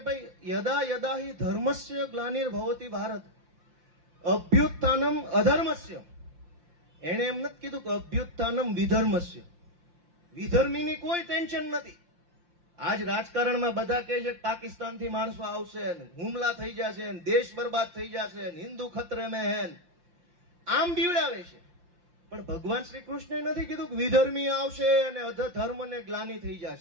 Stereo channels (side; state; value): left; late; 5.7 ms